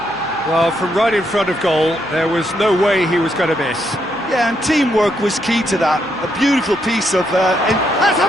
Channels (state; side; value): noise; right; hum, 27 dB below the sound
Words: Well, from right in front of goal, there was no way he was going to miss. Yeah, and teamwork was key to that. A beautiful piece of... Has